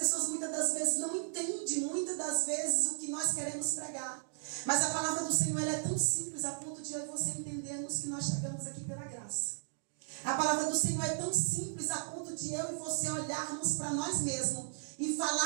muitas das vezes não entendem, muitas das vezes, o que nós queremos pregar. Mas a palavra do Senhor ela é tão simples a ponto de eu e você entendermos que nós chegamos aqui pela graça. A palavra do Senhor é tão simples a ponto de eu e você olharmos para nós mesmos e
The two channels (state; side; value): silent; left; digital silence